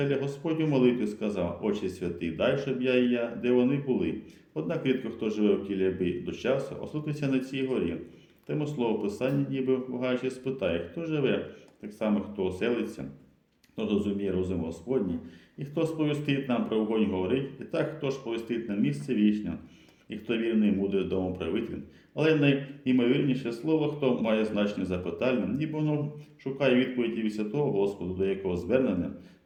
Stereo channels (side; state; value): both; identical; correlation 1.00